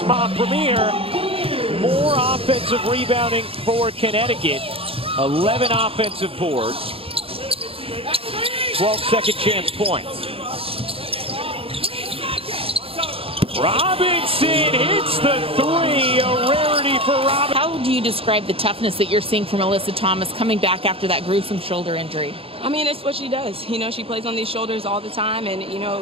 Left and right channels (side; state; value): left; late; 0.27 ms